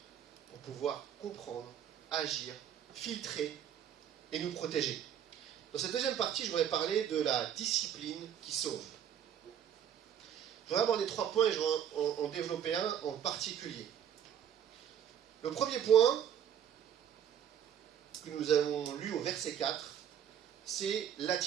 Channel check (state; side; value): quieter; left; 9.4 dB